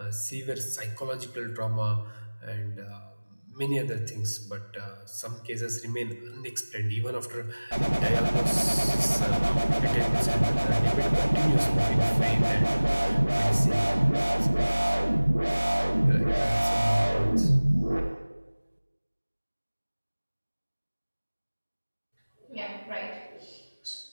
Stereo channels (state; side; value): inverted; both; correlation -1.00